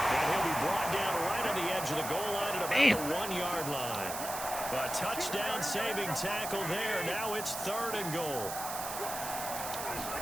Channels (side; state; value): right; noise; hiss, 7 dB below the sound